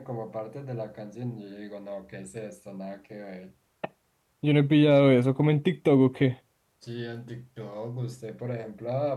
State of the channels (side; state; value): both; identical; correlation 1.00